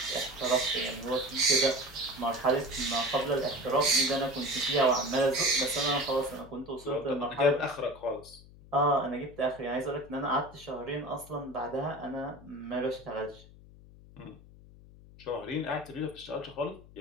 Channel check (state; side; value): noise; left; hum, 21 dB below the sound